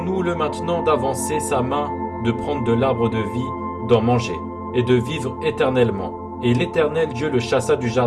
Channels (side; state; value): both; identical; correlation 1.00